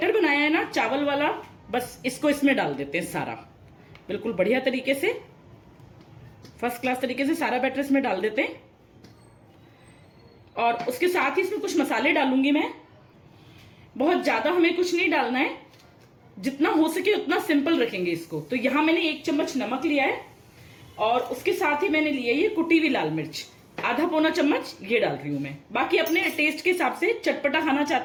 बनाया है ना चावल वाला, बस इसको इसमें डाल देते हैं सारा, बिल्कुल बढ़िया तरीके से, फर्स्ट क्लास तरीके से सारा बैटर इसमें डाल देते हैं। और उसके साथ ही इसमें कुछ मसाले डालूंगी मैं। बहुत ज्यादा हमें कुछ नहीं डालना है, जितना हो सके उतना सिंपल रखेंगे इसको। तो यहां मैंने 1 चम्मच नमक लिया है, और उसके साथ ही मैंने लिया ये कुटी हुई लाल मिर्च, आधा पौना चम्मच ये डाल रही हूं मैं। बाकी अपने टेस्ट के हिसाब से चटपटा खाना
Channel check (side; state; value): both; identical; correlation 1.00